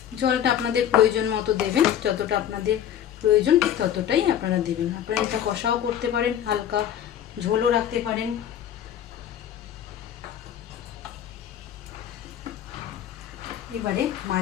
জলটা আপনাদের প্রয়োজন মতো দেবেন, যতটা আপনাদের প্রয়োজন ঠিক ততটাই আপনারা দেবেন। আপনারা এটা কষাও করতে পারেন, হালকা ঝোলও রাখতে পারেন। এবারে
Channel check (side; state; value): right; quieter; 10.2 dB